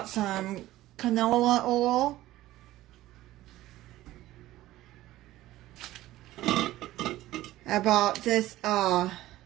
some canola oil. I bought this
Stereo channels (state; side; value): quieter; left; 15.7 dB